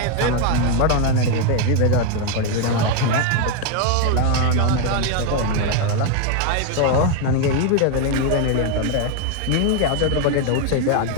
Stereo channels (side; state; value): both; different; correlation 0.01